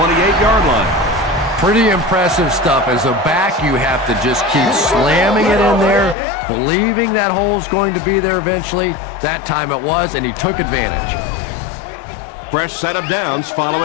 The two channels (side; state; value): right; drops out; at 6.2 s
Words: line. Pretty impressive stuff. As a back, you have to just keep slamming it in there, believing that hole's going to be there eventually. That time it was, and he took advantage. Fresh set of downs